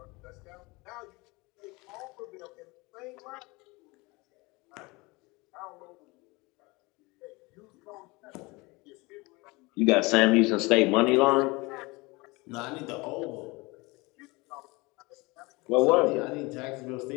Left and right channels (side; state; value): right; quieter; 24.5 dB